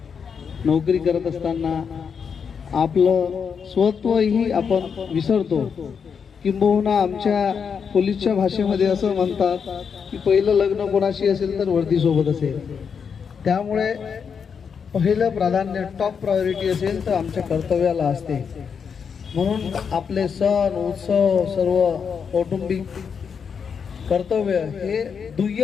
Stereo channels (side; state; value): right; quieter; 6.5 dB